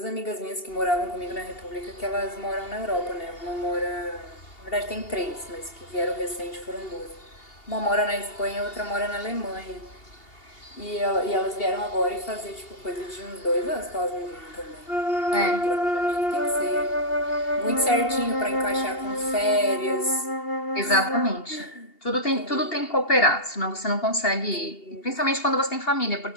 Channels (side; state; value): right; late; 2.8 ms